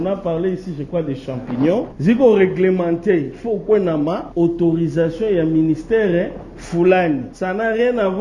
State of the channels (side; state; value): both; identical; correlation 1.00